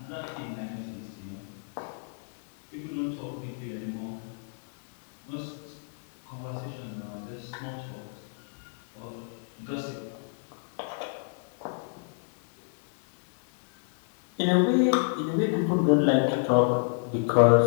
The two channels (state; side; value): silent; right; digital silence